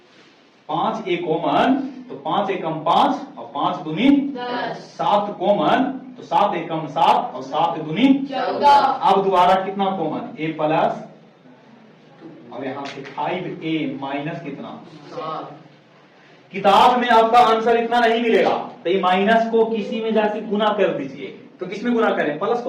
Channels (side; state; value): both; identical; correlation 1.00